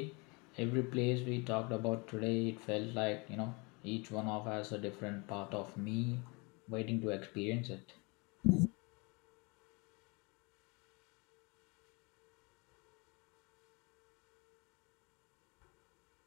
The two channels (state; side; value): quieter; right; 28.9 dB